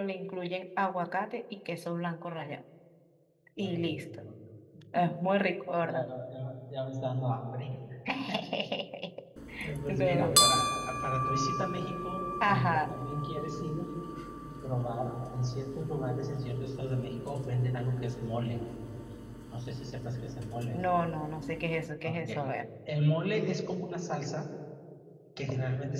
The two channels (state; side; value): identical; both; correlation 1.00